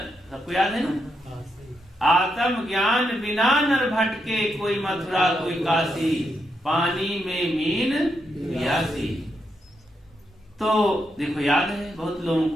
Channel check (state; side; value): normal; both; correlation 0.82